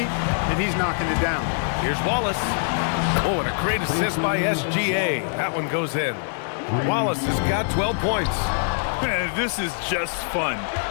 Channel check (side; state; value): right; silent; digital silence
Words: and he's knocking it down. Here's Wallace. Oh, and a great assist by SGA. That one goes in. Wallace has got 12 points. Man, this is just fun.